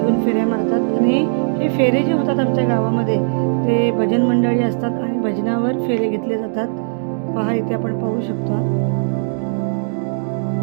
फेऱ्या मारतात. आणि हे फेरे जे होतात आमच्या गावामध्ये ते भजन मंडळी असतात आणि भजनावर फेरे घेतले जातात. पहा इथे आपण पाहू शकतो.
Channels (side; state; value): left; silent; digital silence